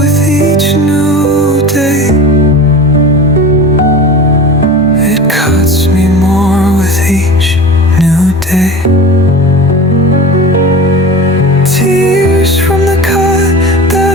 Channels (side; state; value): both; normal; correlation 0.35